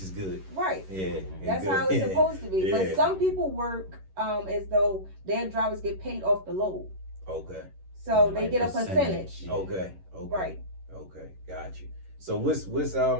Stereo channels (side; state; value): left; late; 11 ms